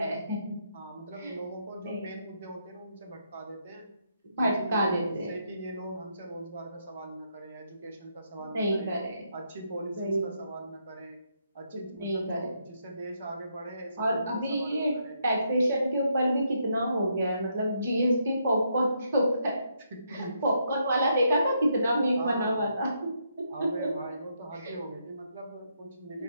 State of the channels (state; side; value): inverted; both; correlation -0.77